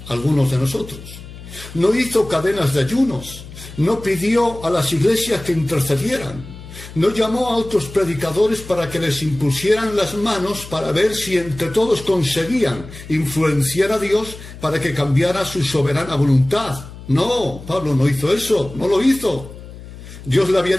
algunos de nosotros. No hizo cadenas de ayunos. No pidió a las iglesias que intercedieran. No llamó a otros predicadores para que les impusieran las manos para ver si entre todos conseguían influenciar a Dios para que cambiara su soberana voluntad. No, Pablo no hizo eso, no lo hizo. Dios le había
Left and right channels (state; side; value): noise; left; hum, 15 dB below the sound